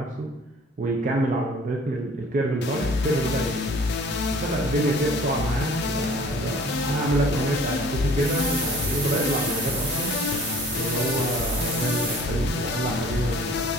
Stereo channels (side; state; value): both; normal; correlation 0.51